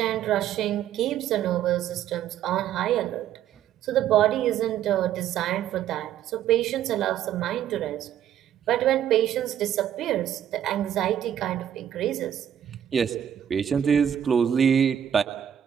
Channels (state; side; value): quieter; left; 10.1 dB